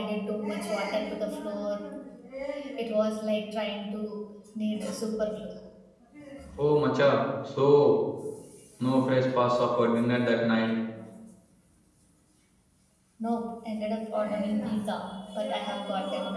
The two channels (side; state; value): both; identical; correlation 1.00